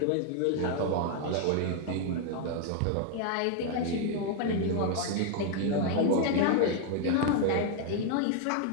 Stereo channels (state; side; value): different; both; correlation 0.00